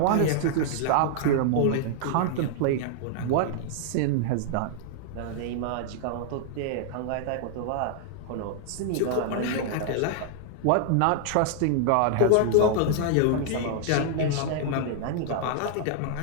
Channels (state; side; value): different; both; correlation -0.01